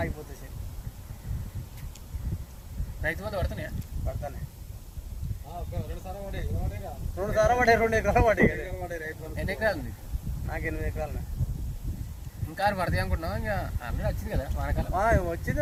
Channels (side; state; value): both; identical; correlation 1.00